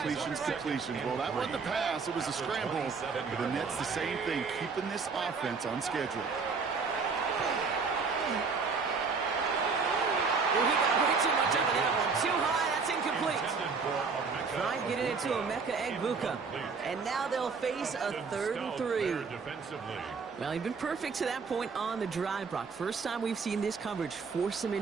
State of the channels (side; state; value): left; quieter; 5.0 dB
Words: that wasn't a pass. It was a scramble. But the Nets, the same thing, keeping this offense on schedule. Well, he got way too much out of that one. Too high, that's incomplete. Trying getting it to Emeka Egbuka. And now they'll face a 3rd and 3. Well, he's been perfect to that point on the drive, Brock. First time we've seen this coverage force him